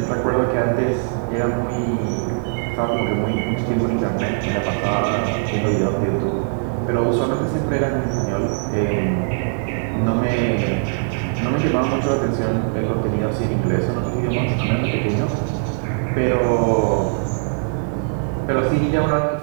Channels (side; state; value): left; silent; digital silence